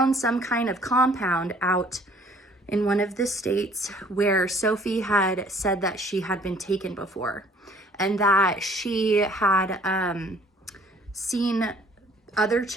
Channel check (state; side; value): normal; both; correlation 0.56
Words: some kind of compound out in one of the states where Sophie had said that she had been taken before, and that she had seen other